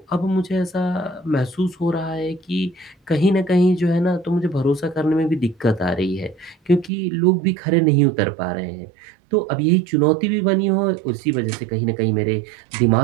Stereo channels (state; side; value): drops out; left; at 6.9 s